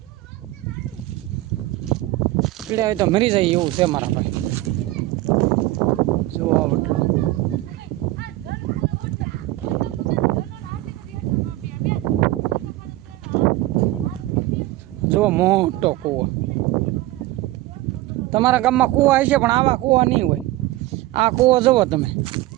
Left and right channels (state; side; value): quieter; left; 17.2 dB